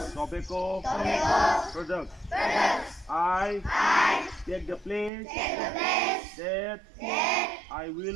tobacco products. I take the place that I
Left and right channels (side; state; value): left; drops out; at 5.1 s